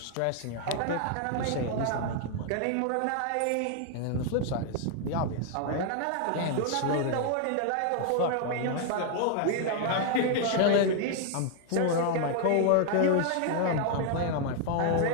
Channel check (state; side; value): different; both; correlation 0.00